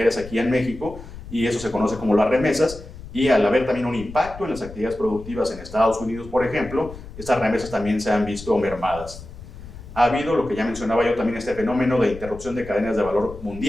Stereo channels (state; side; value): noise; left; rumble, 15 dB below the sound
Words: aquí en México, y eso se conoce como las remesas. Y al haber también un impacto en las actividades productivas en Estados Unidos, por ejemplo, estas remesas también se han visto mermadas. Ha habido, lo que ya mencionaba yo también, este fenómeno de interrupción de cadenas de valor